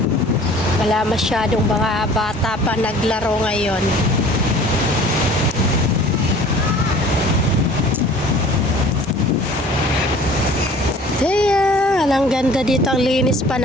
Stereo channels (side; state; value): both; normal; correlation 0.48